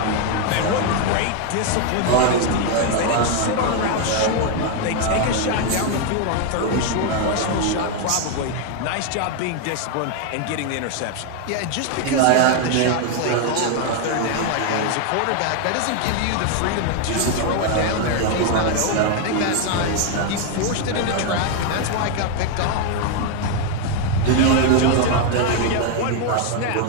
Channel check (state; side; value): different; both; correlation 0.01